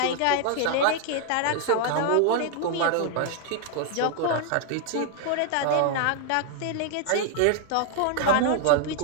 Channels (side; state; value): both; different; correlation 0.00